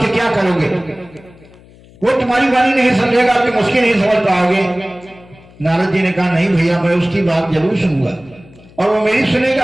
क्या करोगे, वो तुम्हारी वाणी नहीं समझेगा, तुम उसकी नहीं समझ पाओगे। नारद जी ने कहा नहीं भैया, मैं उसकी बात जरूर सुनूंगा और वो मेरी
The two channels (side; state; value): left; noise; hum, 25 dB below the sound